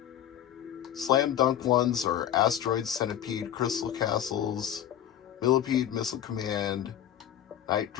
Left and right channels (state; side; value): quieter; right; 10.8 dB